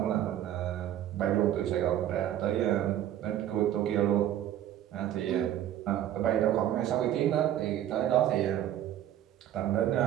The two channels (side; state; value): left; quieter; 11.7 dB